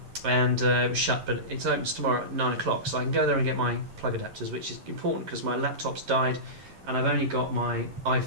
it was shut, but it opens tomorrow at 9 o'clock, so I can go there and get my plug adapters, which is important because my laptop's died and I've only got my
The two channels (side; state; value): left; late; 11 ms